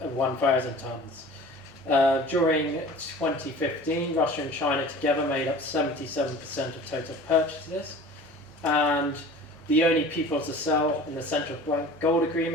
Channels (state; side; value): normal; both; correlation 0.42